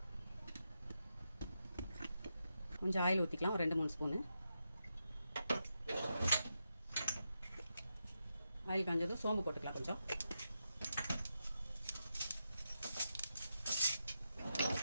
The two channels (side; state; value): both; inverted; correlation -0.86